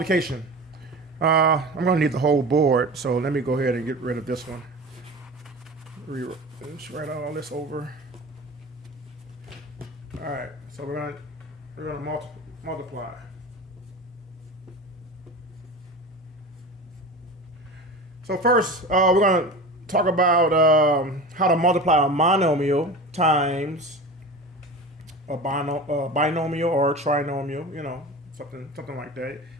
I'm going to need the whole board, so let me go ahead and get rid of this one. Let's write all this over. All right, so we're going to multiply. So first, we're going to talk about how to multiply a monomial times a binomial or a trinomial, something like that. It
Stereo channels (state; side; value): normal; both; correlation 0.32